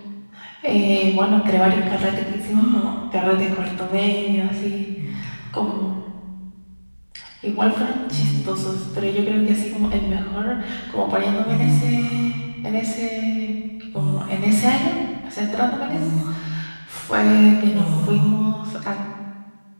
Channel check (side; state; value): both; inverted; correlation -1.00